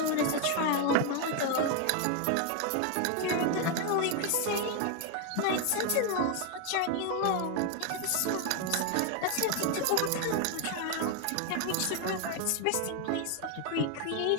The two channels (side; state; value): both; different; correlation 0.01